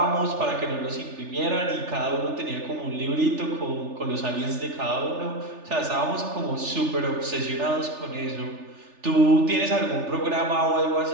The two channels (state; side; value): late; left; 3.4 ms